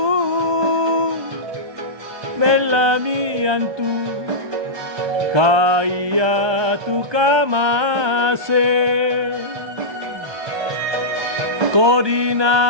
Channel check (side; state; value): left; late; 1.2 ms